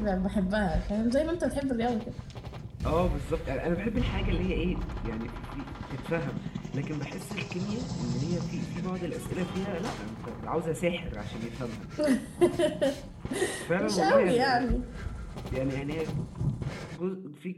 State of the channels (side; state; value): both; identical; correlation 1.00